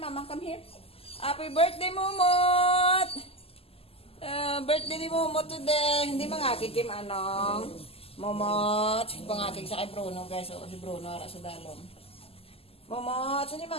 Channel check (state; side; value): late; right; 0.28 ms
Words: come here. Happy birthday, Momot! Birthday ni Momot today. Hindi mangakig kim anong. Momot. Pangakig sa kay Bruno, guys. O, si Bruno, ara sa dalong. Momot, saan yung